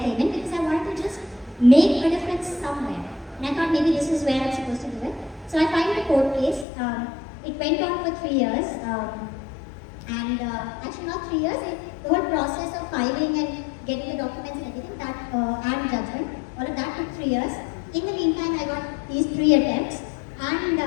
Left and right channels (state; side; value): drops out; right; at 6.7 s